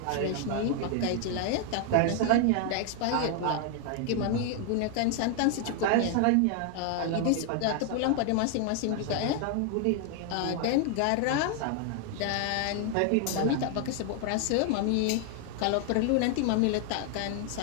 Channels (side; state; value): both; different; correlation 0.00